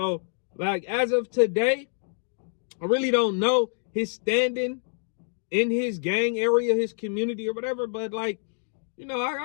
like, as of today, I really don't know his standing in his gang area, his community or whatever. But, like, you know,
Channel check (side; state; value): right; silent; digital silence